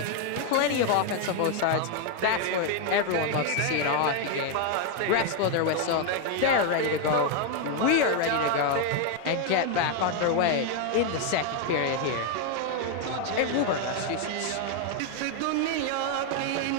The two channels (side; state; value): both; different; correlation 0.01